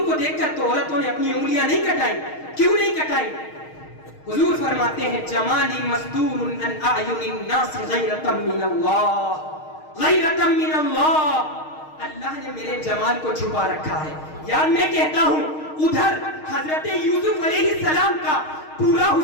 کو دیکھ کر تو عورتوں نے اپنی انگلیاں نہیں کٹائی. کیوں نہیں کٹائی؟ حضور فرماتے ہیں جمالی مستور عن اعین الناس غیرۃ من اللہ، غیرۃ من اللہ. اللہ نے میرے جمال کو چھپا رکھا ہے. یار میں کہتا ہوں ادھر حضرت یوسف علیہ السلام کا پورا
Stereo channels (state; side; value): late; right; 6.5 ms